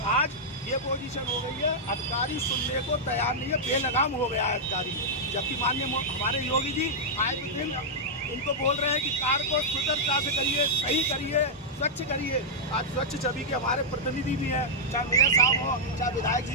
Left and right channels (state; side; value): normal; both; correlation -0.07